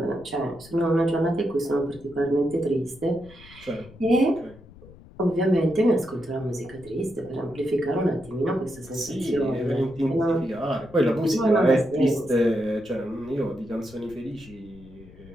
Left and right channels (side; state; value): left; noise; rumble, 21 dB below the sound